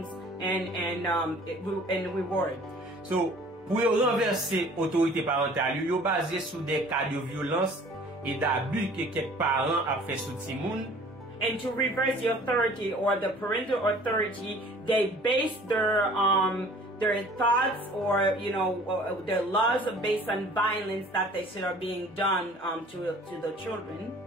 and reward. So, pour renverser autorité parentale, yo basé sur des cas de violence et d'abus que quelques parents a fait sur Timoun. And to reverse the authority or the parental authority, they base their thoughts or their laws based on violence that they said are being done to the children.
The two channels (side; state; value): both; normal; correlation 0.50